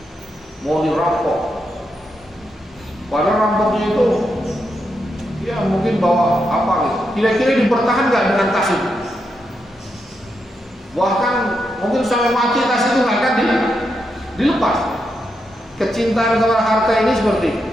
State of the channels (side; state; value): both; normal; correlation 0.83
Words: mau dirampok, padahal rampoknya itu ya mungkin bawa apa gitu, kira-kira dipertahan nggak dengan tas itu? Bahkan mungkin sampai mati tas itu nggak akan dilepas. Kecintaan kepada harta ini seperti itu.